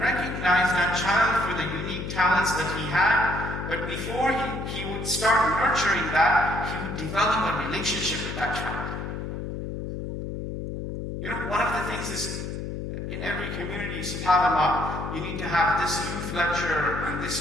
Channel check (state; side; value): noise; left; hum, 6 dB below the sound